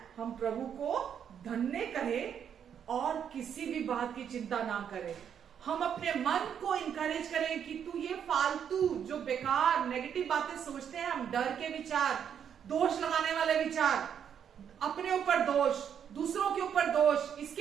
हम प्रभु को धन्य करें और किसी भी बात की चिंता ना करें। हम अपने मन को इंकरेज करें कि तू ये फालतू जो बेकार नेगेटिव बातें सोचते हैं, हम डर के विचार, दोष लगाने वाले विचार, अपने ऊपर दोष, दूसरों के ऊपर दोष,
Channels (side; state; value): left; quieter; 8.4 dB